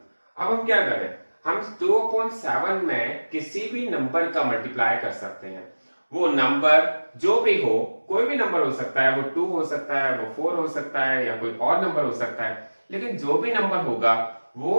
अब हम क्या करें, हम 2/7 में किसी भी नंबर का मल्टीप्लाई कर सकते हैं। वो नंबर जो भी हो, कोई भी नंबर हो सकता है, वो 2 हो सकता है, वो 4 हो सकता है, या कोई और नंबर हो सकता है, लेकिन जो भी नंबर होगा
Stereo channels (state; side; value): inverted; both; correlation -1.00